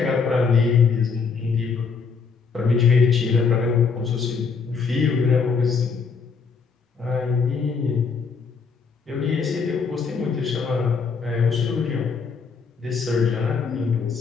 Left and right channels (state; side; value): quieter; right; 5.3 dB